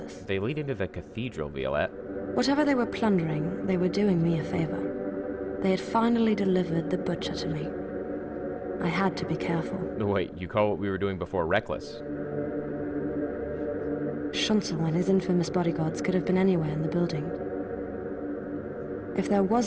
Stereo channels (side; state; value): both; identical; correlation 1.00